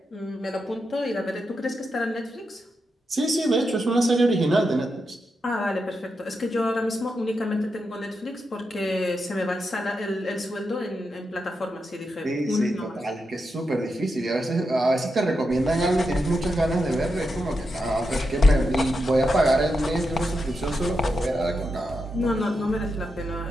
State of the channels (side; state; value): both; normal; correlation 0.86